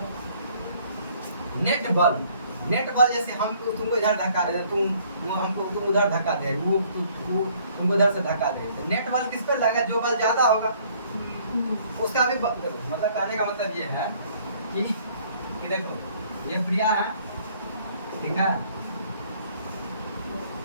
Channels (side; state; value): both; inverted; correlation -0.61